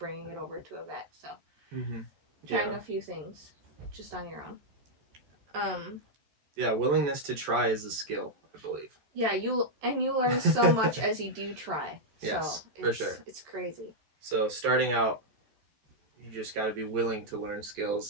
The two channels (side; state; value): left; late; 14 ms